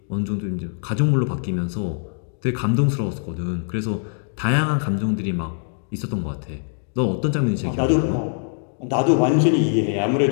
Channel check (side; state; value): right; silent; 64 dB below the other